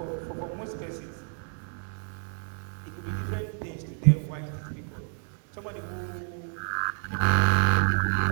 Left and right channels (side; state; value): left; silent; 56 dB below the other